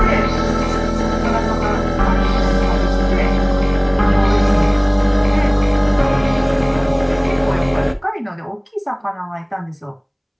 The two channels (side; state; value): both; identical; correlation 1.00